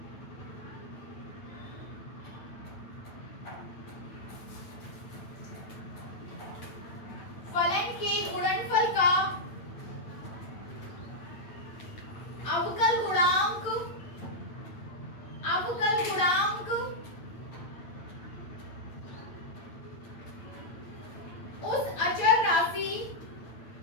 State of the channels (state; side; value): late; right; 8.9 ms